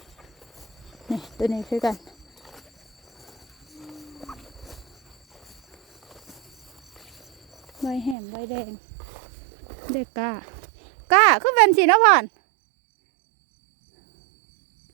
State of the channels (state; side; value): drops out; left; at 8.2 s